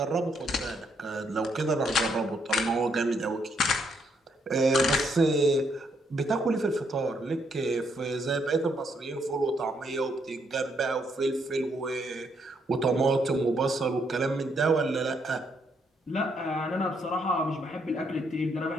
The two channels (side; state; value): both; normal; correlation 0.74